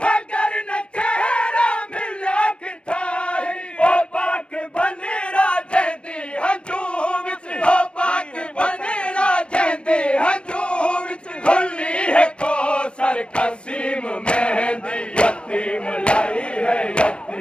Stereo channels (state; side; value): late; right; 0.056 ms